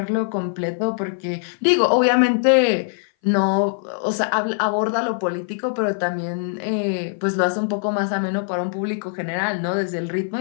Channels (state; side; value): silent; right; 59 dB below the other